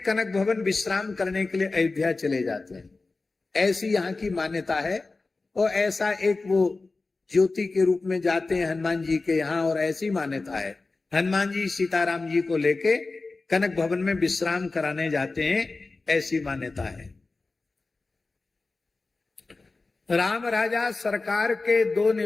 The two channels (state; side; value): quieter; right; 3.6 dB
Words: भवन विश्राम करने के लिए अयोध्या चले जाते हैं। ऐसी यहाँ की मान्यता है। और ऐसा एक वो ज्योति के रूप में जाते हैं हनुमान जी के यहाँ, और ऐसी मान्यता है हनुमान जी सीताराम जी को लेके कनक भवन में विश्राम कराने जाते हैं, ऐसी मान्यता है। राम राजा सरकार के दो